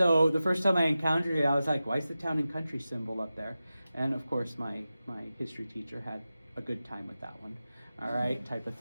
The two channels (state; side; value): inverted; both; correlation -0.94